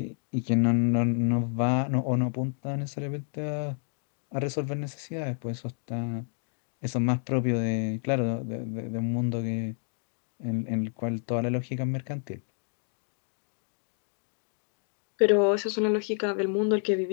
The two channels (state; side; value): silent; right; 57 dB below the other